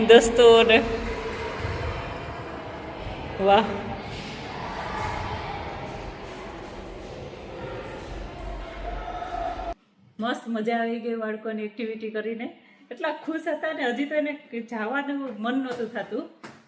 દસ્તો ને વાહ મસ્ત મજા આવી ગઈ બાળકોની એક્ટિવિટી કરીને એટલા ખુશ હતા ને હજી તો એને જવાનું મન નહોતું થતું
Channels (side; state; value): both; identical; correlation 1.00